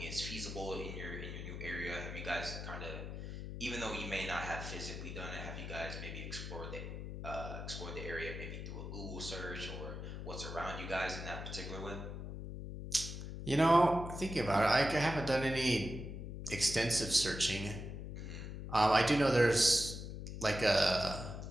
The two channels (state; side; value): noise; left; hum, 7 dB below the sound